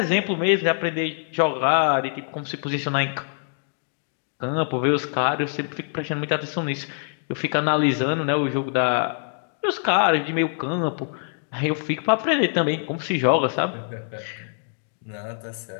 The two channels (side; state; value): right; silent; digital silence